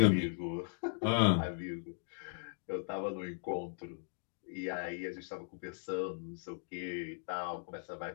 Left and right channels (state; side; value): silent; right; digital silence